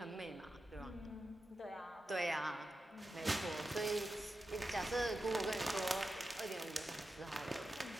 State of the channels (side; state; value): both; normal; correlation 0.91